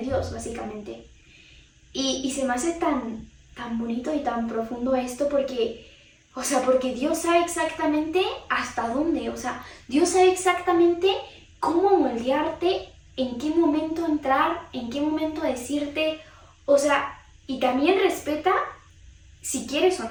básicamente. Y se me hace tan bonito y tan profundo esto porque Dios sabe exactamente hasta dónde. O sea, Dios sabe exactamente cómo moldearte, en qué momento entrar, en qué momento decirte. O sea, y también respeta si quieres o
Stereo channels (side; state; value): both; identical; correlation 1.00